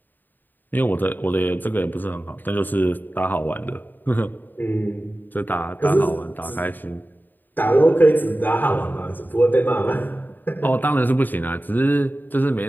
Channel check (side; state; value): right; late; 0.090 ms